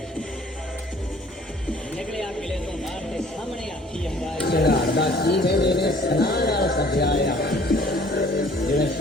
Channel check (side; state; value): both; normal; correlation 0.54